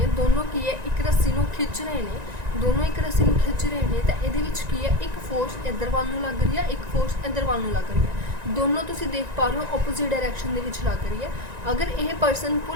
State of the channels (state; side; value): late; left; 1.9 ms